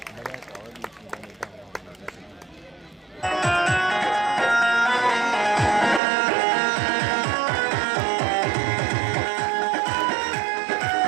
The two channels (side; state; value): left; drops out; at 6.0 s